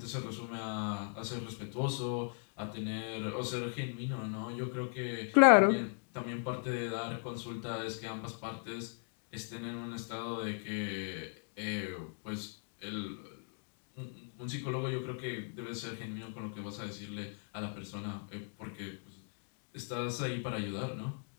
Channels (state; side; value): silent; right; 53 dB below the other